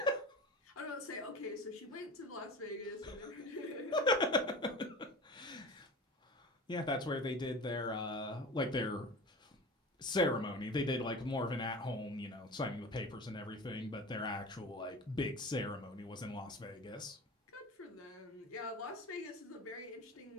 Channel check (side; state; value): both; normal; correlation 0.34